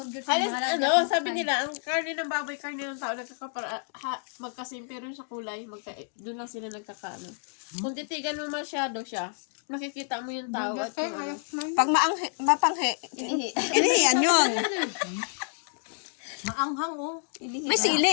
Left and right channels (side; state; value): right; silent; 59 dB below the other